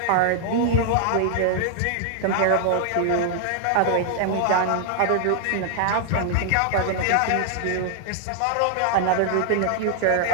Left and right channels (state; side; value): different; both; correlation 0.00